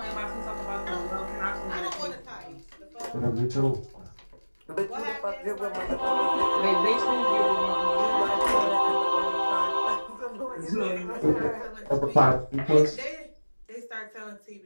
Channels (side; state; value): both; inverted; correlation -1.00